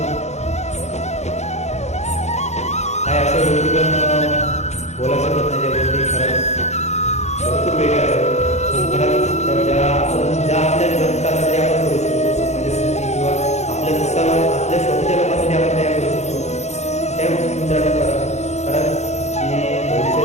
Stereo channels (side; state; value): right; late; 0.33 ms